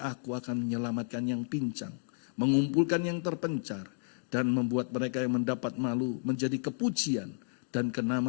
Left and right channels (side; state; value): right; silent; digital silence